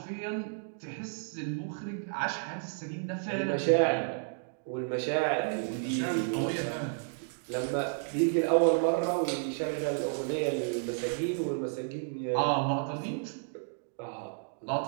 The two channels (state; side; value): silent; left; digital silence